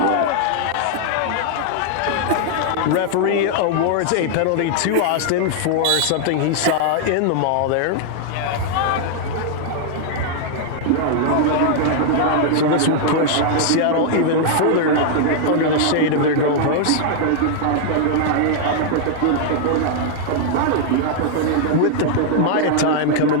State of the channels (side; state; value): both; different; correlation 0.00